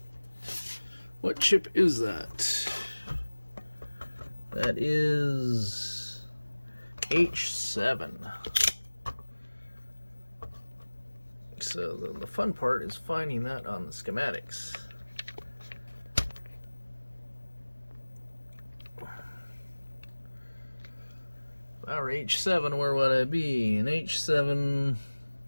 What chip is that? That is H7. So the fun part is finding that on the schematics. If I were H7, where would I be? In H7...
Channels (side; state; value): both; inverted; correlation -1.00